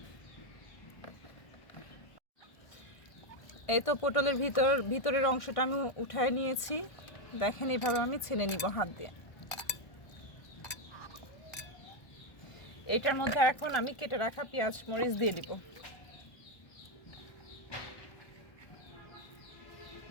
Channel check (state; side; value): late; right; 1.5 ms